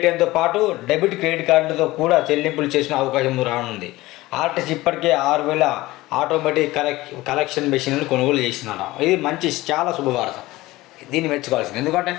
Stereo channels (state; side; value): quieter; right; 18.7 dB